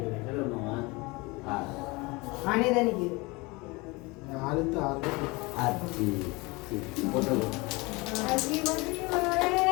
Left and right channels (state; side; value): quieter; right; 25.0 dB